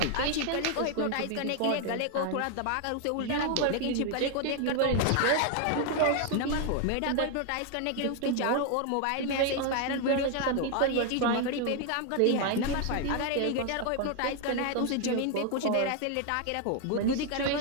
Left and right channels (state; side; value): different; both; correlation 0.01